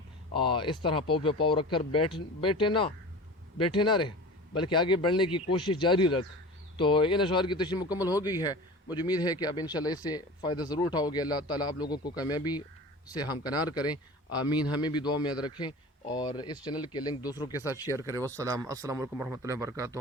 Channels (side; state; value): both; normal; correlation 0.36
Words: اس طرح پاؤ پہ پاؤ رکھ کر بیٹھے نہ رہے، بلکہ آگے بڑھنے کی کوشش جاری رکھ۔ تو ان اشعار کی تشریح مکمل ہو گئی ہے، مجھے امید ہے کہ اب انشاءاللہ اس سے فائدہ ضرور اٹھاؤ گے۔ اللہ تعالیٰ آپ لوگوں کو کامیابی سے ہمکنار کریں، آمین۔ ہمیں بھی دعا میں یاد رکھیں اور اس چینل کے لنک دوسروں کے ساتھ شیئر کریں۔ السلام علیکم ورحمۃ اللہ وبرکاتہ۔